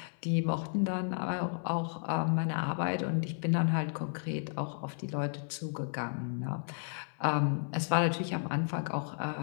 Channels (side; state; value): right; silent; 56 dB below the other